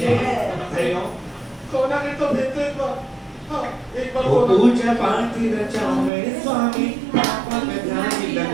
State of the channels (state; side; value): drops out; left; at 6.1 s